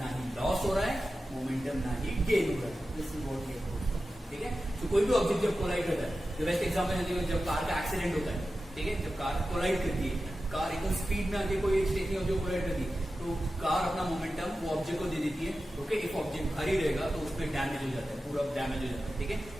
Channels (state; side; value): normal; both; correlation 0.93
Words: ना ही loss हो रहा है, momentum ना ही gain हो रहा है. This is what we have proved. ठीक है, तो कोई भी ऑब्जेक्ट जब कोलाइड करता है, the best example है जब कार का एक्सीडेंट होता है. ठीक है, जब कार कोलाइड करती है, कार एकदम स्पीड में आके कोई स्टेशन जो कोलाइड करती है, तो कार अपना मोमेंटम वो ऑब्जेक्ट को दे देती है. ओके, इफ ऑब्जेक्ट भारी रहेगा तो उसमें डैमेज हो जाता है, पूरा डैमेज हो जाता है. ठीक है,